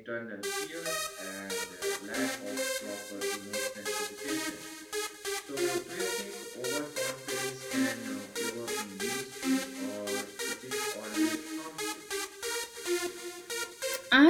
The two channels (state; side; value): identical; both; correlation 1.00